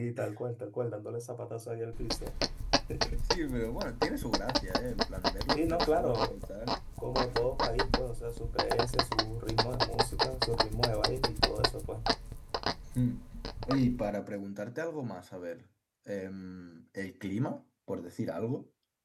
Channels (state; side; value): identical; both; correlation 1.00